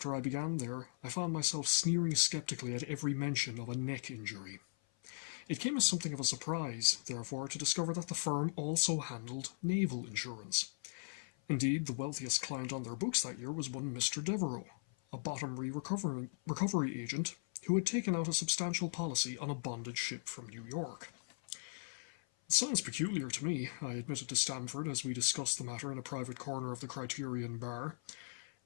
I began there, I found myself sneering skeptically at every mention of a neck injury. It came as something of a surprise, therefore, to discover that the firm also handled naval insurance. Indeed, the wealthiest client on their books that year was one Mr. Devereux, a bottomry recovery agent who had taken out a substantial policy on a bonded ship from New York. It sounds peculiar to me, I admitted to Stamford as we discussed the matter in a private corner of the Criterion bar.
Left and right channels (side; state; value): right; silent; 52 dB below the other